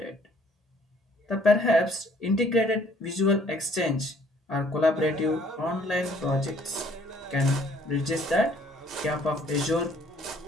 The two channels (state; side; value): normal; both; correlation 0.60